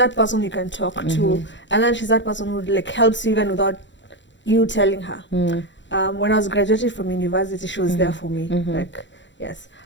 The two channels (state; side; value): late; right; 0.53 ms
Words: person you can talk to, and then she's that person who like helps you even without you telling her. When I was graduating from university, she was there for me, like yes.